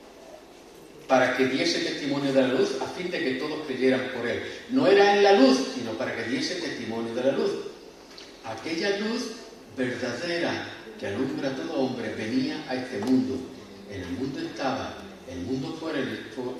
para que diese testimonio de la luz, a fin de que todos creyeran por Él. No era en la luz, sino para que diese testimonio de la luz. Aquella luz verdadera que alumbra a todo hombre venía a este mundo. En el mundo estaba, el mundo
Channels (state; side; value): identical; both; correlation 1.00